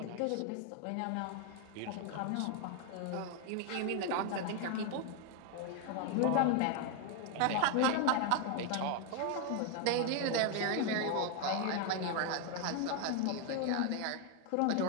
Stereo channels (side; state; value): both; different; correlation 0.00